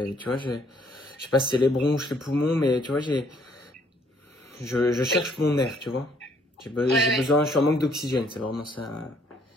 tu vois, je sais pas si c'est les bronches, les poumons, mais tu vois, je Oui. cherche mon air, tu vois. Ouais, J'ai ouais. besoin, je suis en manque d'oxygène, c'est vraiment ça.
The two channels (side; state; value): both; normal; correlation 0.65